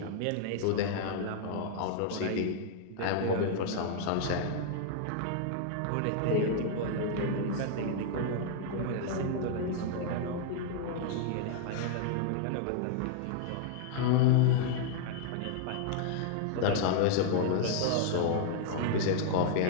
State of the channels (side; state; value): both; different; correlation -0.01